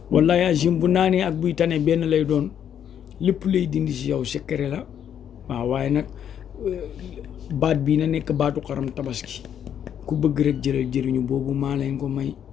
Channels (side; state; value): right; quieter; 9.1 dB